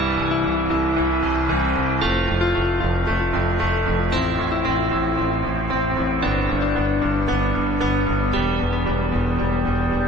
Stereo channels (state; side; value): normal; both; correlation 0.56